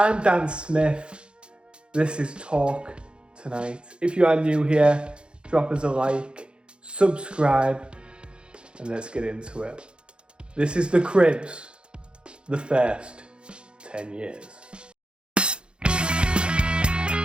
Dan Smith, this is Talk Tonight. If you are new here, drop us a like, subscribe, and let's get into it. This is the Crypts, the first 10 years.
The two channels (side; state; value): left; late; 0.054 ms